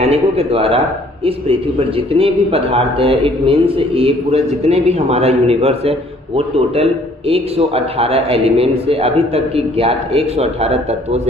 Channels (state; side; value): normal; both; correlation 0.59